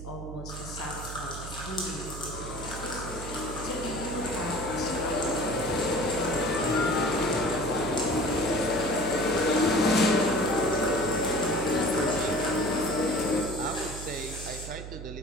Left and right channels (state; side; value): noise; right; hum, 10 dB below the sound